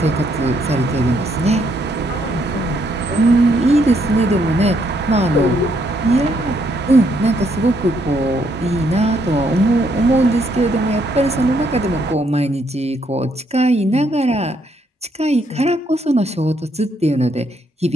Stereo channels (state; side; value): normal; both; correlation 0.72